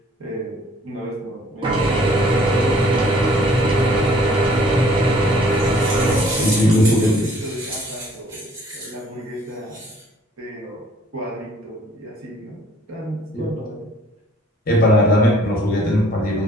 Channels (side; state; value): both; normal; correlation 0.58